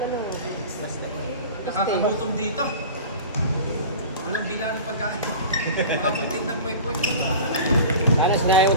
Nakakagutom dito. Walang bila ng pagkain. Makapagtid ng kwek-kwek. Alas na yun,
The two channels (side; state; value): both; inverted; correlation -0.36